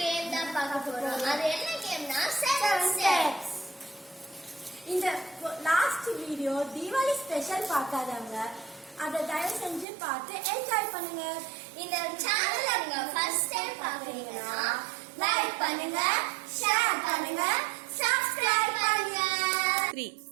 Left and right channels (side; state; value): left; drops out; at 9.9 s